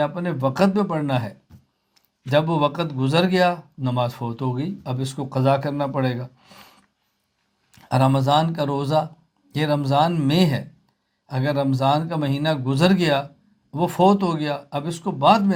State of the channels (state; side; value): identical; both; correlation 1.00